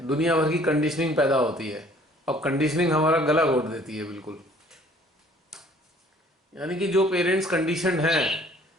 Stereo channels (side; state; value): both; normal; correlation 0.56